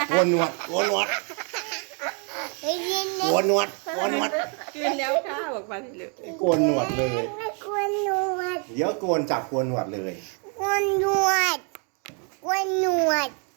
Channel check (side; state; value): left; quieter; 38.9 dB